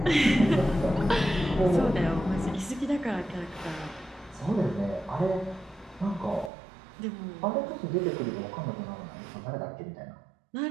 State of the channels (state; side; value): drops out; left; at 6.5 s